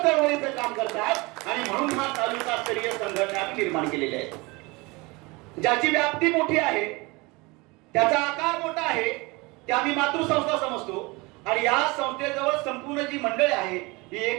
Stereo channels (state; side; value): quieter; left; 24.9 dB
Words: काम करतात आणि म्हणून हा तालुका स्तरीय संघटना आम्ही निर्माण केलेली आहे. ज्याची व्याप्ती मोठी आहे, त्याचा आकार मोठा आहे, ते आम्ही मातृसंस्था समजतो आणि या संस्थेजवळ संपूर्ण जी मंडळी आहे ही